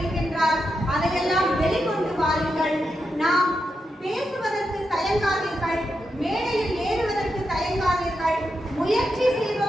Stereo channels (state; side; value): normal; both; correlation 0.86